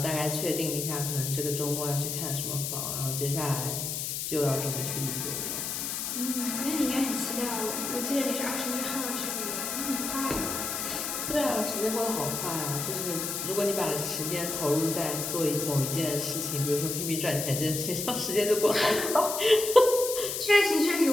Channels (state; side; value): noise; left; hiss, 3 dB below the sound